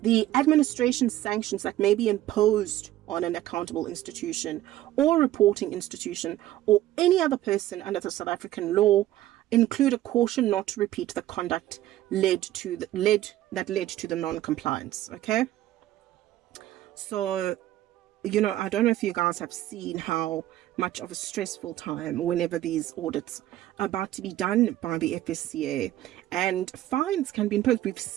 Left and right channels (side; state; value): left; quieter; 14.3 dB